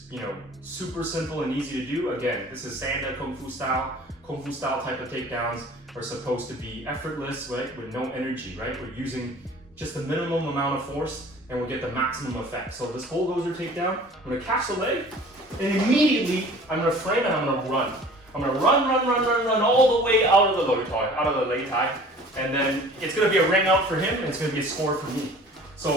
you know, super simple and easy to do. Again, this is Sanda Kung Fu style. Kung Fu style type of takedowns are supposed to be effortless, right? With no energy, right? We're using just the minimum amount of force and we'll get the maximum effect. So this bulldozer takedown, I'm gonna catch the leg and immediately I'm gonna frame and I'm gonna run. I'm gonna run all the way out of the low tie, out of the lei tai. And then it's gonna be a ring out for him and it's gonna be a score for me.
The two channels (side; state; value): both; normal; correlation 0.47